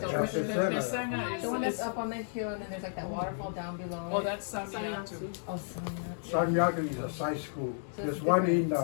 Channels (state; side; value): silent; right; digital silence